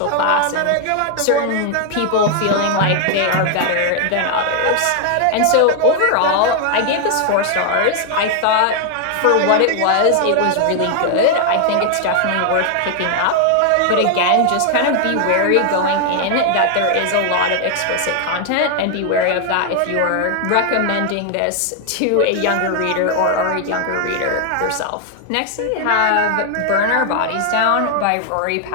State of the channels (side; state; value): both; different; correlation 0.00